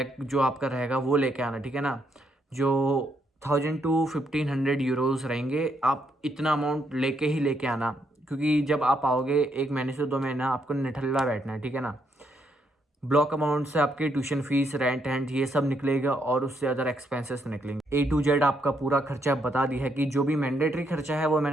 जो आपका रहेगा वो लेके आना, ठीक है ना। जो 1000 टू 1500 यूरोज़ रहेंगे, आप इतना अमाउंट लेके आना, क्योंकि जब आप आओगे 1 महीने से 2 महीना आपको निठल्ला बैठना है, ठीक है ना। ब्लॉक अमाउंट से आपकी ट्यूशन फीस, रेंट एंड ये सब निकलेगा, और उससे अदर एक्सपेंसेस निकलेंगे। A to Z आपका पूरा खर्चा बता दिया है, कि जो भी मैंडेटरी खर्चा है वो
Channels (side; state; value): both; normal; correlation 0.76